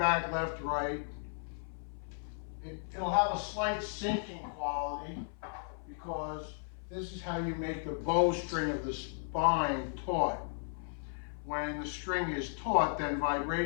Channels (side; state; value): right; silent; 54 dB below the other